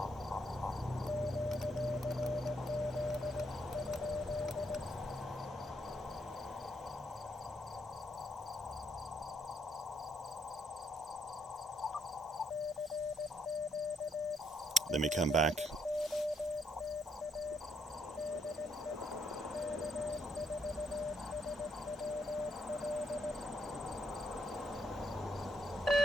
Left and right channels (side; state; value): both; normal; correlation 0.73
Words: Let me come back